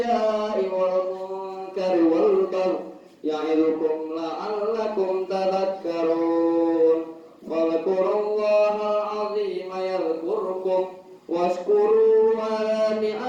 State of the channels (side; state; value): both; identical; correlation 1.00